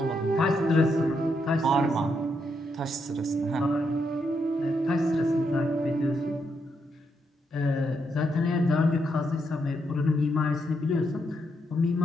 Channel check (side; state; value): both; normal; correlation 0.79